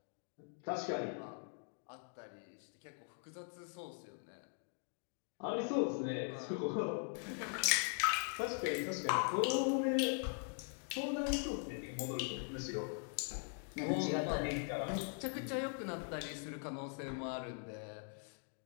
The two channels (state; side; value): silent; right; 50 dB below the other